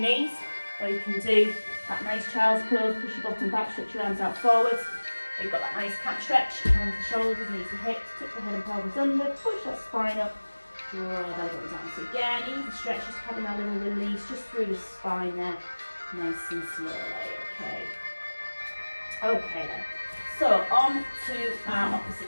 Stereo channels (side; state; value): both; inverted; correlation -1.00